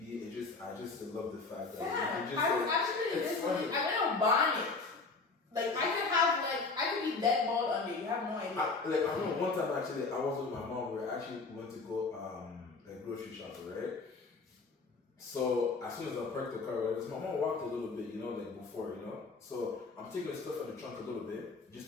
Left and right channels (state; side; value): quieter; right; 4.0 dB